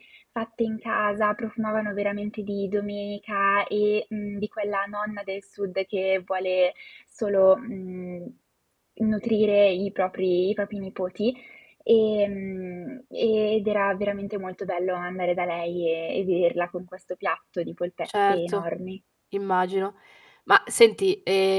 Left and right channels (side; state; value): both; identical; correlation 1.00